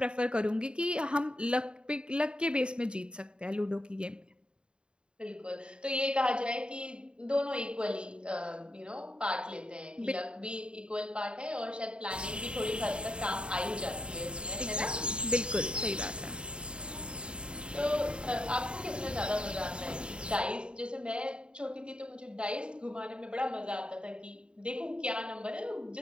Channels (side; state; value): left; late; 0.052 ms